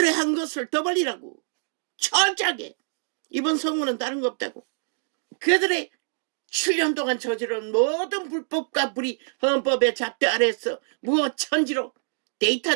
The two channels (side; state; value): left; silent; digital silence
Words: 한 것을 더 벌리라고. 철저하게. 이번 선거는 다른 거 없다고. 그들의 7년 동안 저지른 모든 불법과 불의 헌법의 잣대 아래에서 무엇 천지로